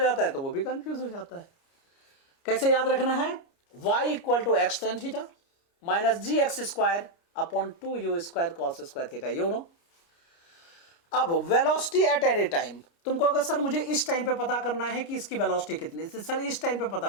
है तो वो भी कंफ्यूज हो जाता है। कैसे याद रखना है? y equal to X tan theta minus ji X square upon 2u square cos square theta, you know. अब वेलोसिटी एट एनी टाइम, तुम कहोगे सर मुझे इस टाइम पे पता करना है कि इसकी वेलोसिटी कितनी है, सर इस टाइम पे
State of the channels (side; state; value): right; late; 29 ms